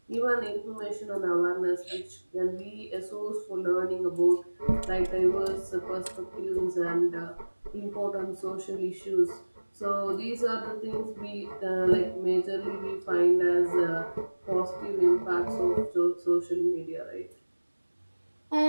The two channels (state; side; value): inverted; both; correlation -1.00